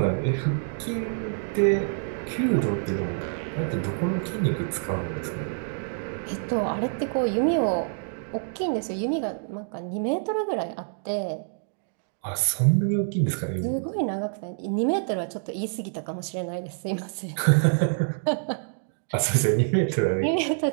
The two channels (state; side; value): silent; left; digital silence